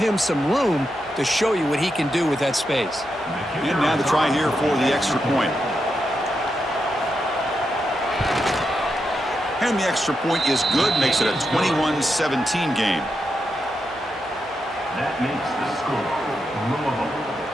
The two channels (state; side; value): normal; both; correlation 0.85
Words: some room to show you what he can do with that space. And now the try here for the extra point. And the extra point is good, makes it a 21-17 game. That makes the score. Louisville